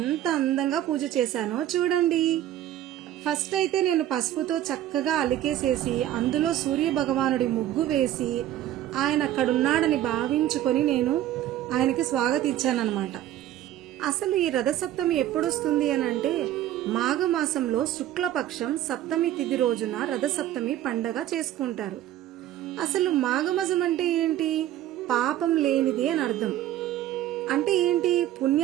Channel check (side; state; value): left; quieter; 12.8 dB